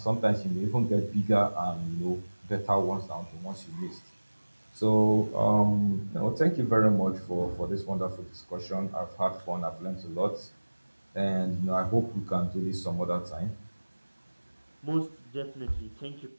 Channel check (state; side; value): inverted; both; correlation -1.00